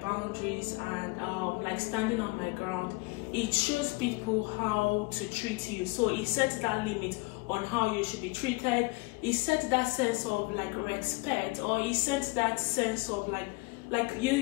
and like standing on my ground, it shows people how to treat you. So it sets that limit on how you should be treated. It sets that sense of like respect, or it sets that sense of like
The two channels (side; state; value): right; quieter; 26.0 dB